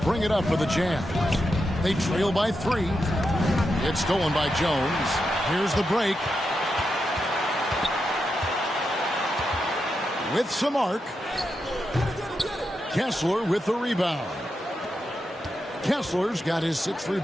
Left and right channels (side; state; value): both; normal; correlation 0.86